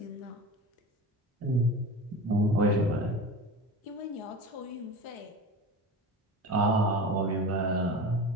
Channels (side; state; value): both; normal; correlation 0.31